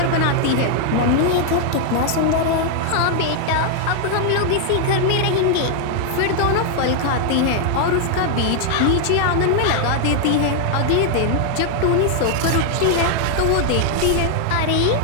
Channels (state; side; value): different; both; correlation 0.00